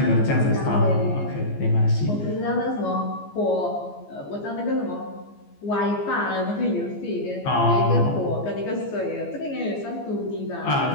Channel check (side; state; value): right; late; 14 ms